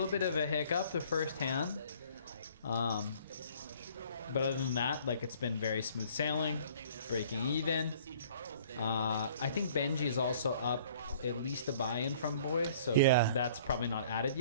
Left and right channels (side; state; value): both; inverted; correlation -0.54